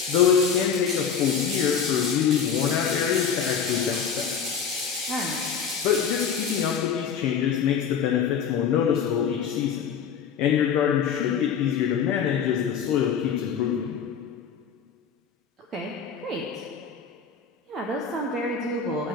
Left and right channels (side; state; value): right; quieter; 7.0 dB